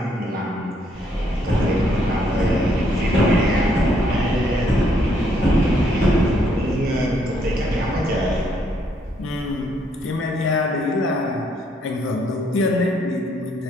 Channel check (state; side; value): normal; both; correlation 0.71